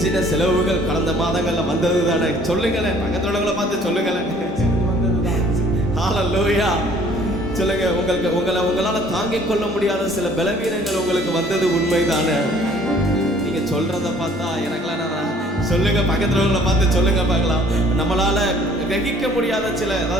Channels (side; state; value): both; normal; correlation 0.56